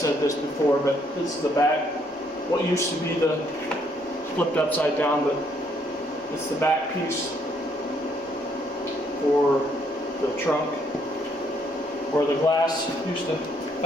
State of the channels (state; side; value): normal; both; correlation 0.70